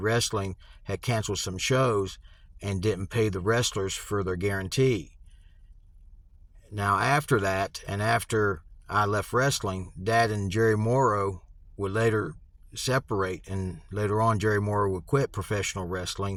had canceled some shows and didn't pay the wrestlers for their guarantee. Now, after that, and after I left wrestling, Dad and Jerry Morrow would later separate, and later on Jerry Morrow would quit professional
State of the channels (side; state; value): both; identical; correlation 1.00